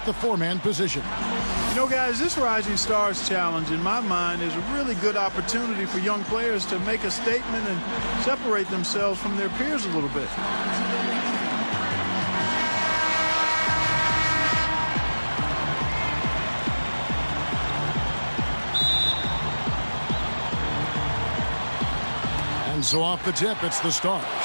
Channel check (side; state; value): both; inverted; correlation -1.00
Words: the four-man position. You know, guys, this Rising Stars Challenge, in my mind, is a really good opportunity for young players to make a statement and separate themselves from their peers a little bit. And so off the tip, it's the Stars.